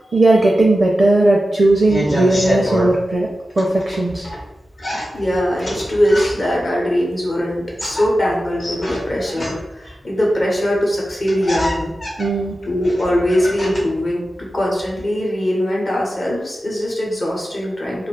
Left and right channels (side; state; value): both; normal; correlation 0.92